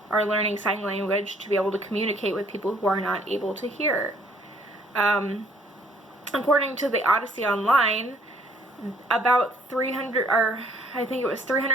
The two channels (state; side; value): normal; both; correlation 0.62